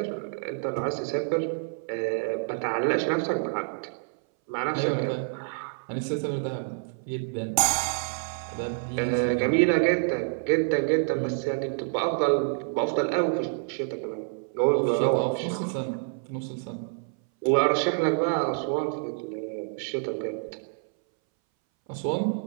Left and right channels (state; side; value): silent; left; 60 dB below the other